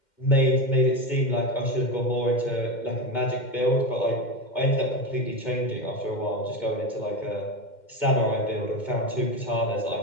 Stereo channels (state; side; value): late; right; 2.1 ms